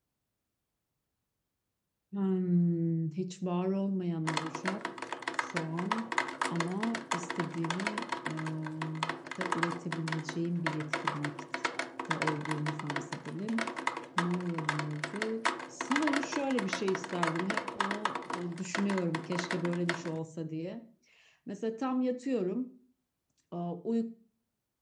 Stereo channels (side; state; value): both; identical; correlation 1.00